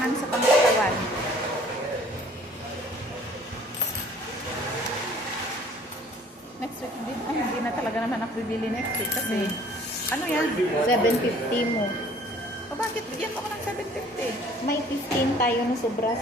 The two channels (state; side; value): normal; both; correlation 0.54